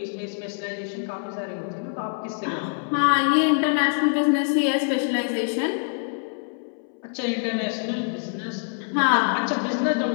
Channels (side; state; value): right; silent; 62 dB below the other